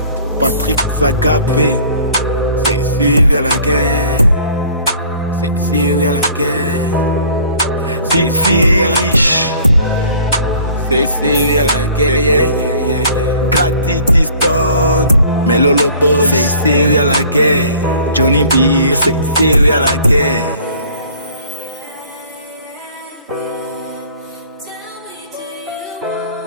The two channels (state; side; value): inverted; both; correlation -0.51